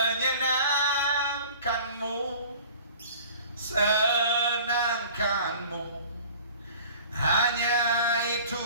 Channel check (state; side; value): inverted; both; correlation -0.46